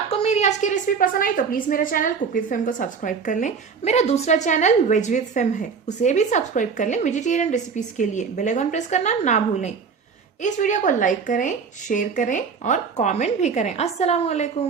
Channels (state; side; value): quieter; left; 5.7 dB